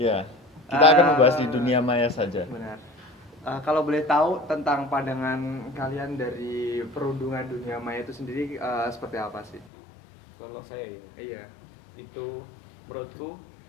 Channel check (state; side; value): drops out; right; at 9.7 s